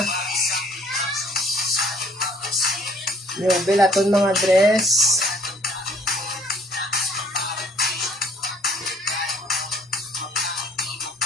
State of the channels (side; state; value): both; normal; correlation 0.59